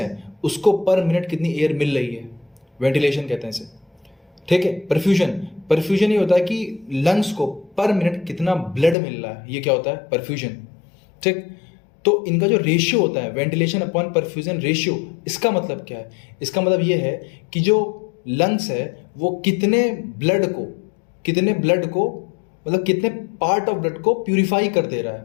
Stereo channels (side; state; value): right; drops out; at 9.0 s